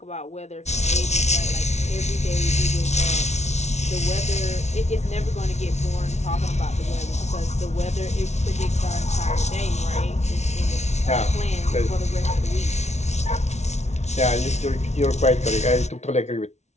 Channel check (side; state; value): right; late; 0.32 ms